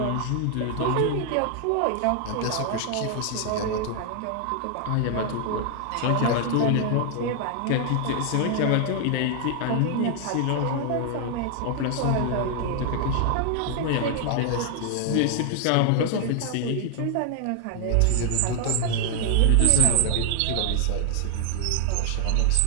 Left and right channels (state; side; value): different; both; correlation 0.00